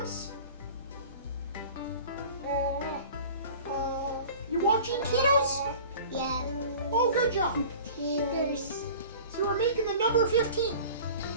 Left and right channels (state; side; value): inverted; both; correlation -0.42